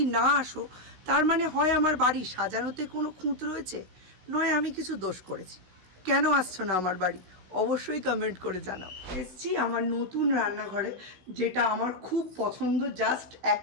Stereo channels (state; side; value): late; left; 16 ms